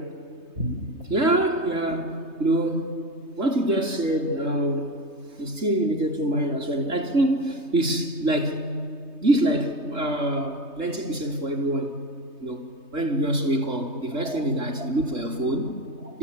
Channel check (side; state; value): left; late; 3.2 ms